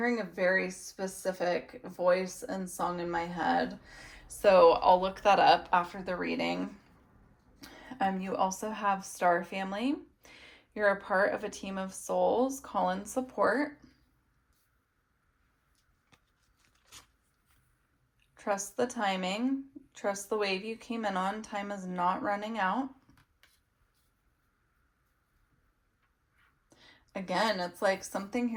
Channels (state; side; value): identical; both; correlation 1.00